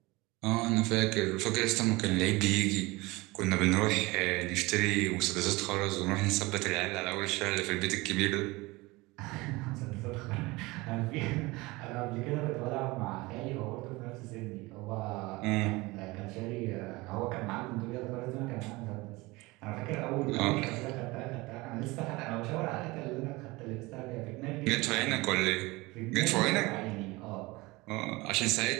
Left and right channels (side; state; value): left; quieter; 22.4 dB